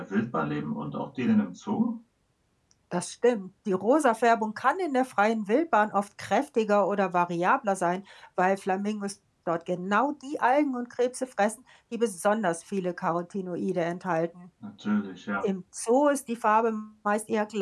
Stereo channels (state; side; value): identical; both; correlation 1.00